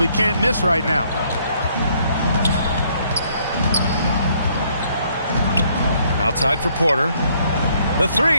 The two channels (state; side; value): inverted; both; correlation -0.67